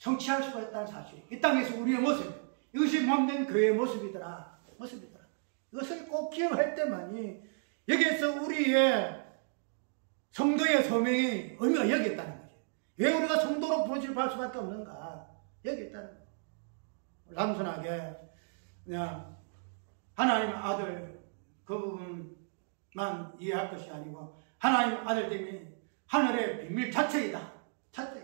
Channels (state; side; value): silent; left; digital silence